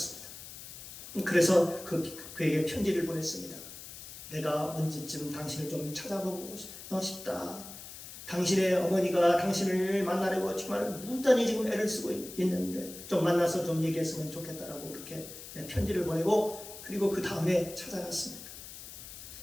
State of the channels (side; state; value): left; noise; hiss, 13 dB below the sound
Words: 그래서 그에게 편지를 보냈습니다. 내가 언제쯤 당신을 좀 찾아보고 싶다. 당신의 어머니가 당신을 만나려고 정말 무단히 지금 애를 쓰고 있는데 좀 만나서 좀 얘기했으면 좋겠다라고 그렇게 편지를 보내고 그리고 그 다음에 찾아갔습니다.